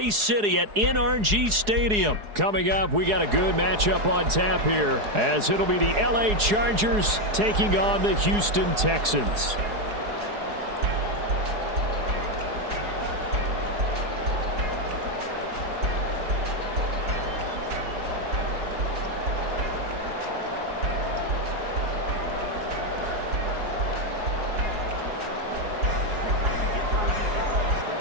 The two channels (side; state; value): left; late; 4.8 ms